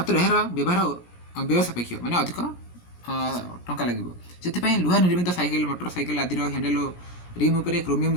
यार व्यवहार व्यय सापेक्ष माने अधिक टंका लगे से लुहा निर्मित साइकेल मोटर साइकेल आदि हैंडल रिम उपर क्रोमियम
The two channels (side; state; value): right; late; 17 ms